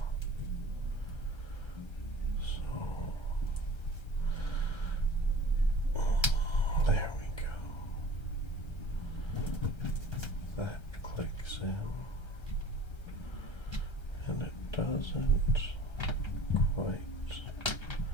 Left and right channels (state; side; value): late; right; 1.3 ms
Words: So, there we go. That clicks in, and it doesn't quite fit.